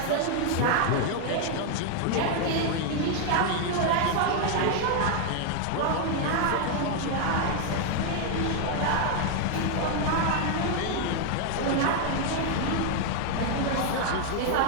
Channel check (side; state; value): both; different; correlation 0.00